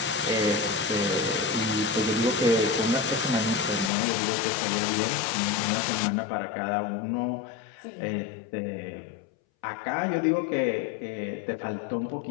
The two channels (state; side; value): drops out; right; at 3.9 s